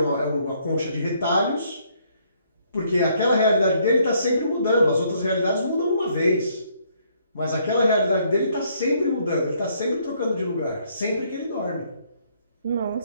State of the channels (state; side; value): inverted; both; correlation -0.68